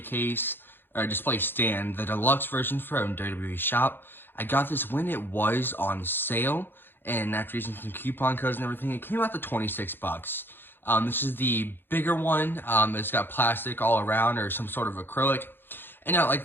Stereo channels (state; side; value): late; right; 0.10 ms